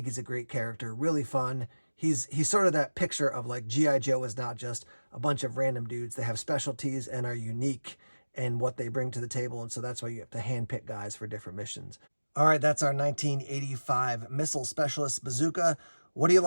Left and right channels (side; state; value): both; inverted; correlation -1.00